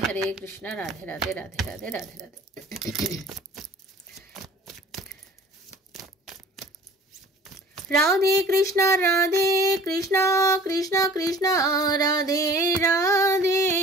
হরে কৃষ্ণ রাধে রাধে রাধে রাধে রাধে রাধে। राधे कृष्णा कृष्णा कृष्णा राधे राधे,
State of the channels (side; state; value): both; normal; correlation 0.47